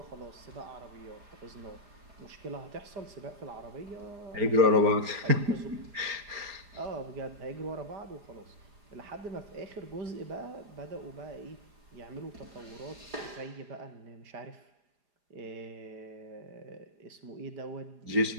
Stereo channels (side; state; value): left; late; 4.9 ms